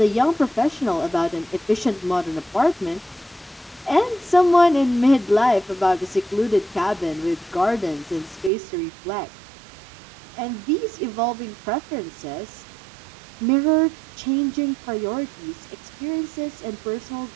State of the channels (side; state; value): left; drops out; at 8.5 s